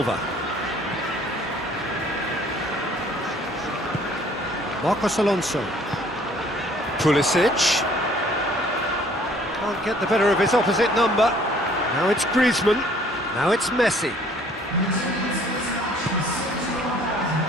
Marcos Alonso. Pulisic. Can't get the better of his opposite number. Now it's Griezmann. Now it's Messi.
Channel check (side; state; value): both; normal; correlation 0.57